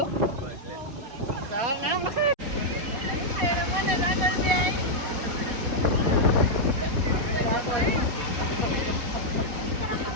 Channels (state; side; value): late; left; 4.2 ms